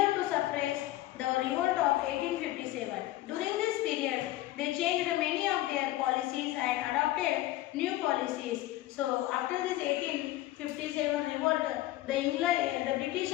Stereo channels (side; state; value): right; quieter; 16.1 dB